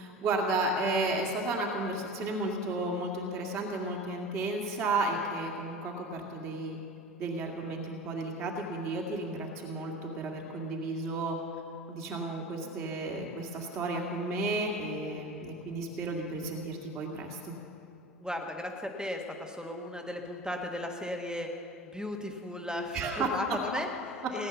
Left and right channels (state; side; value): normal; both; correlation 0.35